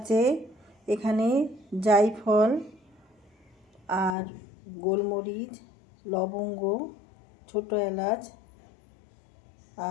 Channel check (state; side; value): drops out; right; at 4.2 s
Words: এখানে জায়ফল আর গোলমরিচ, লবঙ্গ, ছোটো এলাচ